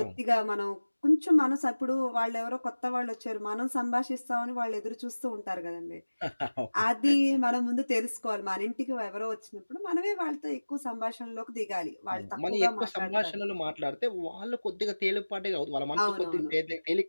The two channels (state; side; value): inverted; both; correlation -1.00